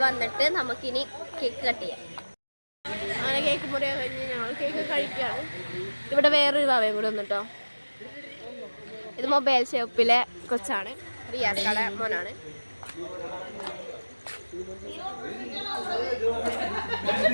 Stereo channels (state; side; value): inverted; both; correlation -1.00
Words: വന്നിട്ട് നമുക്കിനി കേക്ക് കട്ട് ചെയ്യാം. അങ്ങനെ കേക്ക് മുറിയാൻ കഴിഞ്ഞ് ഞങ്ങൾ കേക്ക് കഴിക്കുകയാണ്. ഇവിടെ വേറൊരു ഭാവയും കൂടി വന്നിട്ടോ. ഇത് മൊബൈൽ ഷോപ്പിലെ കൊച്ചാണ്, റിയാസ് കട മോനാണ്.